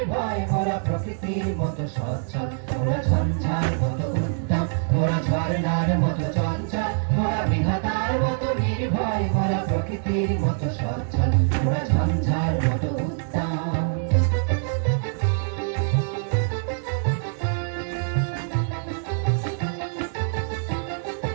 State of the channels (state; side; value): silent; left; 60 dB below the other